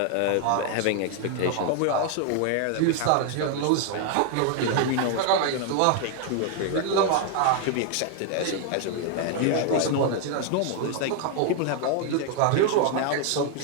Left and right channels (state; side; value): different; both; correlation 0.00